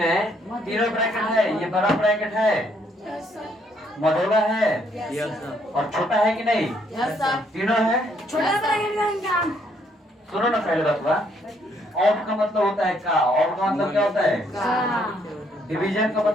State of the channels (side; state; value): both; normal; correlation 0.69